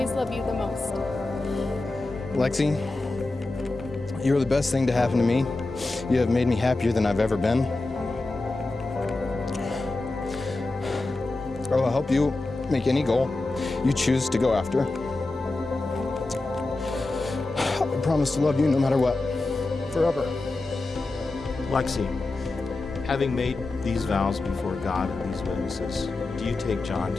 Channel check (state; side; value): quieter; right; 3.1 dB